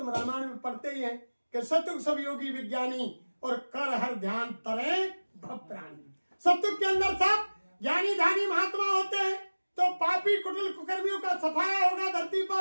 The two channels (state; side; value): inverted; both; correlation -1.00